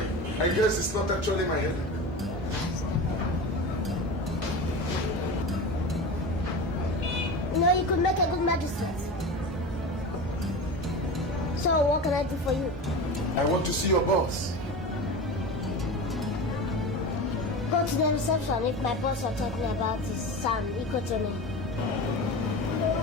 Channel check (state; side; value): normal; both; correlation 0.28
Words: I guess it's not actually my headache. No, you could make a good magistrate. So what can I do for you? I want to see your boss. Go to the reception if my boss are talking about his son, Ikotomi.